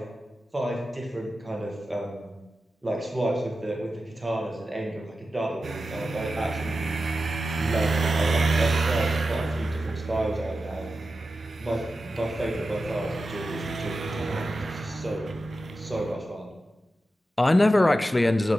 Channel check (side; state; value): both; normal; correlation 0.92